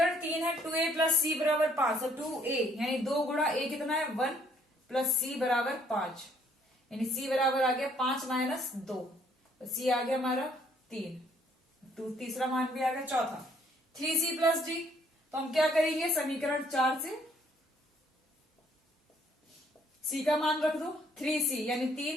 3 है 2A + C बराबर 5, तो 2A यानी 2 गुणा A कितना है 1 + C बराबर 5, यानी C बराबर आ गया 5 - 2, तो C आ गया हमारा 3, तीसरा मान भी आ गया। चौथा 3C + D, तो हम क्या करेंगे, समीकरण 4 से C का मान रख दो, 3C यानी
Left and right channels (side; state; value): both; normal; correlation 0.65